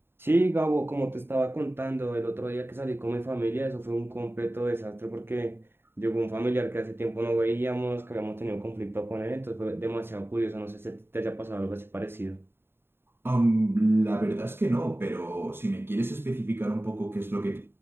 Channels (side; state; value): left; late; 0.11 ms